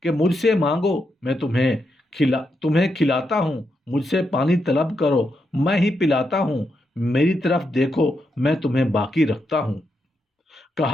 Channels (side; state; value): both; normal; correlation 0.83